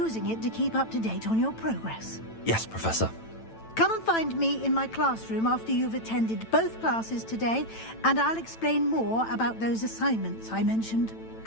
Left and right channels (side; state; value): right; late; 9.0 ms